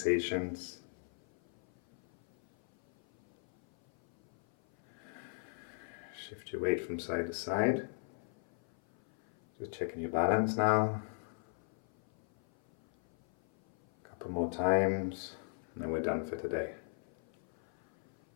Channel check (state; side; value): silent; right; 53 dB below the other